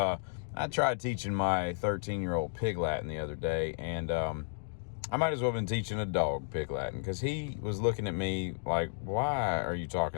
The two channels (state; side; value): silent; right; digital silence